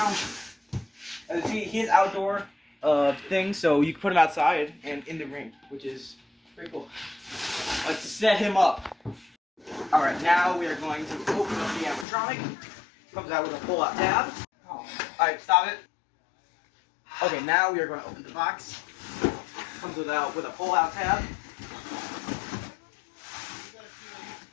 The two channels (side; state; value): right; drops out; at 12.1 s